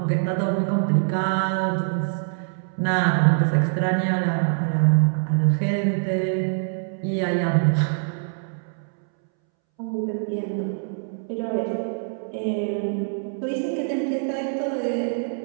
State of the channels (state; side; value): silent; left; 63 dB below the other